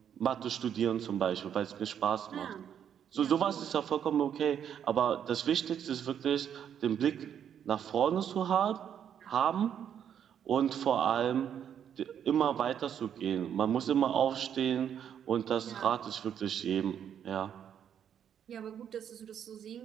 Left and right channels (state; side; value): quieter; left; 8.9 dB